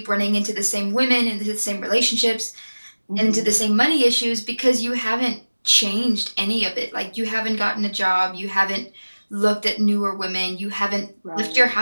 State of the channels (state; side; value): inverted; both; correlation -1.00